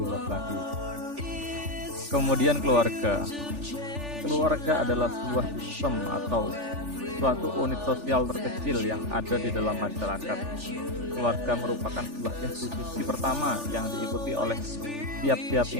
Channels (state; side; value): late; left; 3.4 ms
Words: luas lagi. Kemudian keluarga adalah sebuah sistem atau suatu unit sosial terkecil yang ada di dalam masyarakat. Keluarga merupakan sebuah institusi pertama yang diikuti oleh tiap-tiap